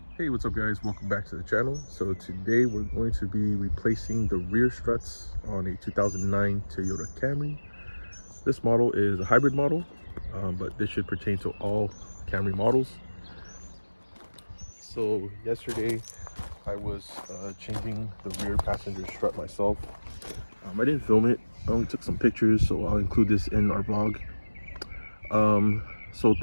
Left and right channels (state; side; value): inverted; both; correlation -1.00